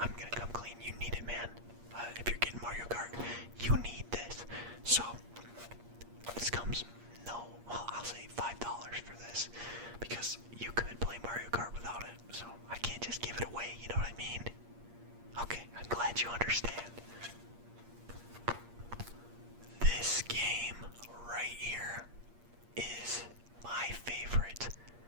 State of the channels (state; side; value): late; left; 8.5 ms